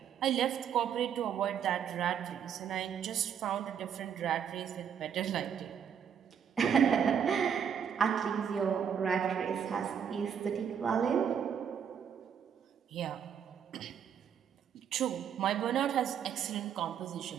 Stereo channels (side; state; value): left; quieter; 8.1 dB